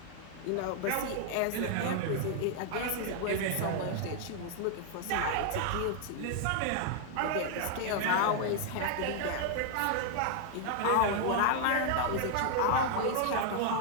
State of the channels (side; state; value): both; different; correlation 0.00